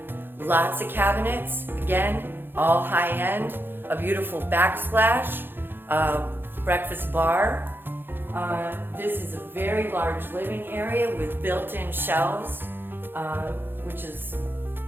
Lots of cabinets, again, all high end, a beautiful backsplash, breakfast bar. This is a very large living area with built-in shelves, which is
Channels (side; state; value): left; late; 0.10 ms